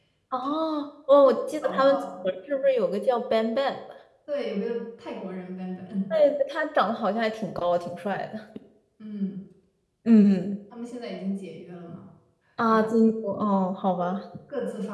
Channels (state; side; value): identical; both; correlation 1.00